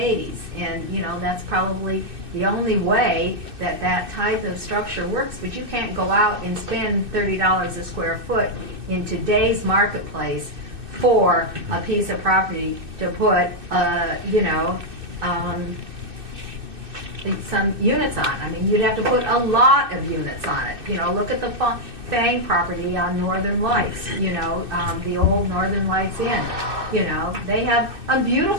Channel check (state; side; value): late; left; 2.6 ms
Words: And, you know, that's probably the only way that that type of structure works. But you can't go out and spend $30 a square foot in today's marketplace for a piece of property to put, you know, some units on. I mean, you'd have to put a lot of units on it. You know, look at the Fang property on Northern Lights, you know, the old Northern Lights Inn. You know, they have a